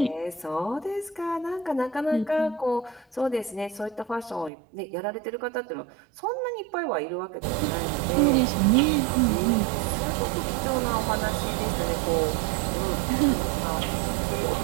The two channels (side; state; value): left; drops out; at 4.5 s